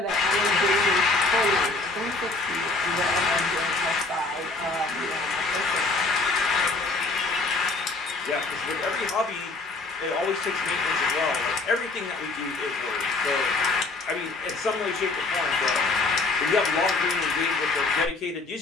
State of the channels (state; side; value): quieter; right; 3.5 dB